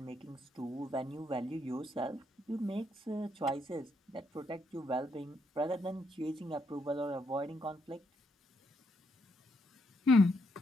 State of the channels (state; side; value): normal; both; correlation 0.76